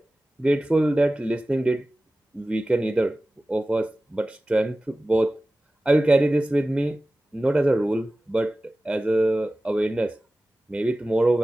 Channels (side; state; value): both; normal; correlation 0.96